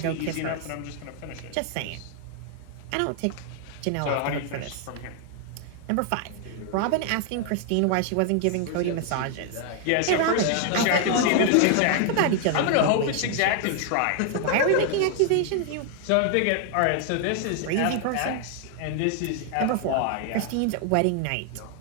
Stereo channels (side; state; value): both; different; correlation 0.00